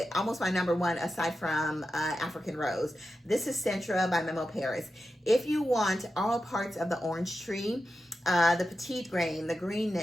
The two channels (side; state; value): both; normal; correlation 0.90